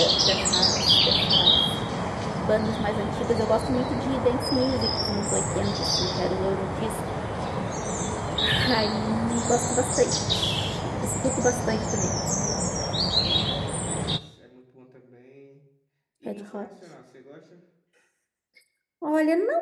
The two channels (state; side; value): identical; both; correlation 1.00